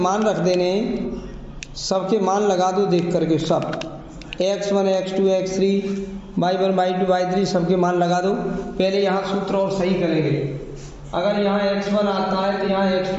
रख देने, सबके मान लगा दो देख करके। सब x1, x2, x3, y1, y2, y3 सबके मान लगा दो। पहले यहाँ सूत्र और सही करेंगे। अगर यहाँ x1 आता है तो यहाँ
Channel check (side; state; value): both; identical; correlation 1.00